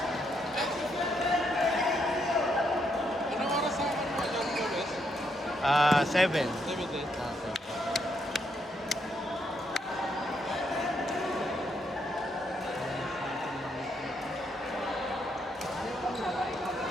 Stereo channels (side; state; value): both; normal; correlation 0.76